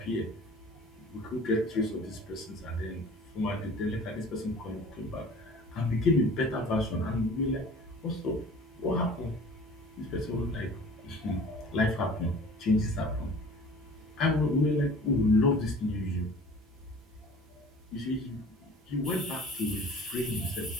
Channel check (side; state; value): both; normal; correlation 0.45